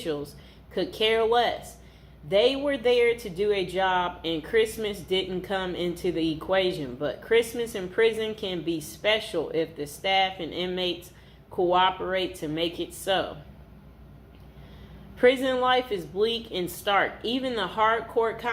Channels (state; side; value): identical; both; correlation 1.00